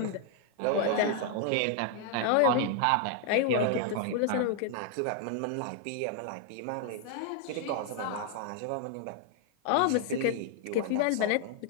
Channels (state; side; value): different; both; correlation 0.00